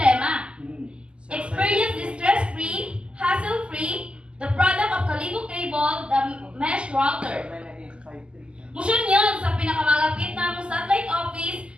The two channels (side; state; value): left; late; 0.051 ms